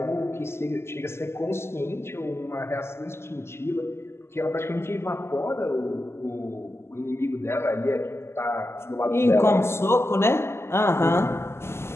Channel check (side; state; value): right; late; 0.12 ms